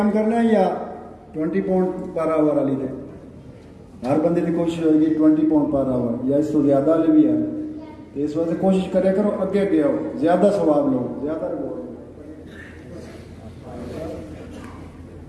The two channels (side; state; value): both; identical; correlation 1.00